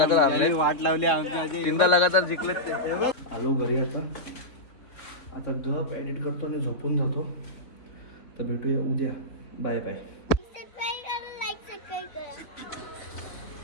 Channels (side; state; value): right; late; 3.6 ms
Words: हारले, यांनी वाट लावली आमच्या. 3दा लगातार जिंकलेत ते. आलो घरी आता गप एडिट करतो आणि झोपून जातो. तर भेटूया उद्या. Bye bye.